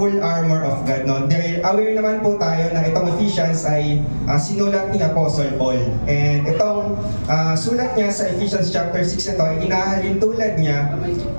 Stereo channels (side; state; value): both; inverted; correlation -1.00